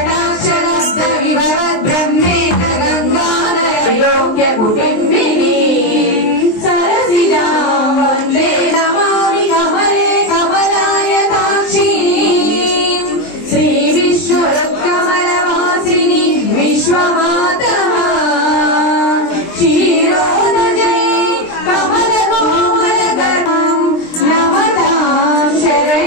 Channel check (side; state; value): right; late; 23 ms